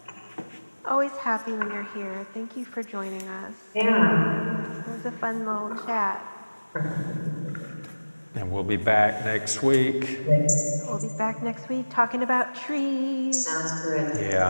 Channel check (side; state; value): both; inverted; correlation -1.00